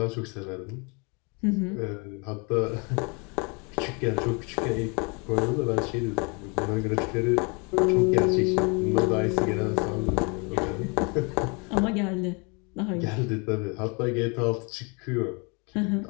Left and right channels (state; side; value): quieter; right; 32.1 dB